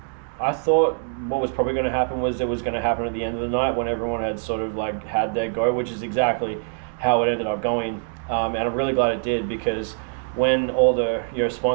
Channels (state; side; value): silent; left; 60 dB below the other